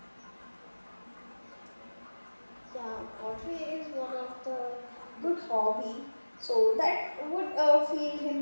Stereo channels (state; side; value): inverted; both; correlation -1.00